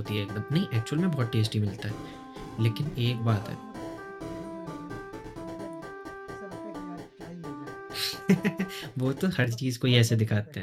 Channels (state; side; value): identical; both; correlation 1.00